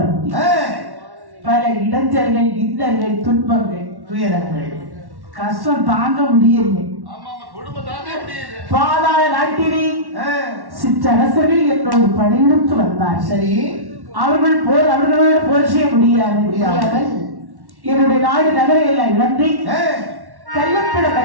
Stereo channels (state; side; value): late; left; 1.1 ms